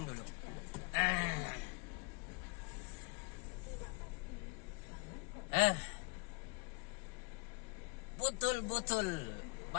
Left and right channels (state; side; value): quieter; right; 31.8 dB